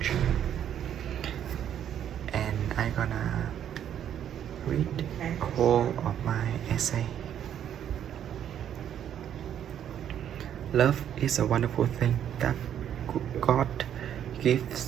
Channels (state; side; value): quieter; left; 9.8 dB